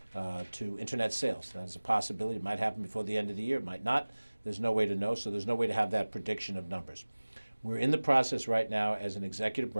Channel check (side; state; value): both; inverted; correlation -1.00